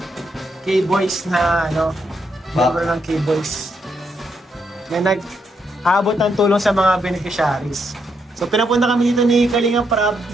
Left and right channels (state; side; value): normal; both; correlation 0.78